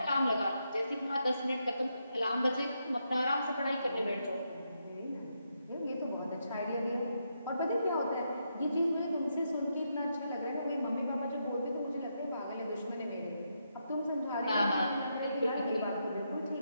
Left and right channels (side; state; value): both; inverted; correlation -0.81